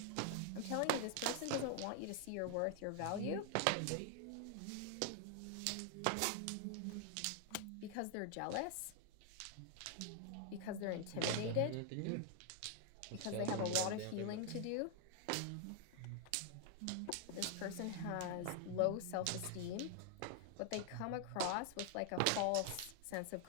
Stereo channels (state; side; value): different; both; correlation 0.00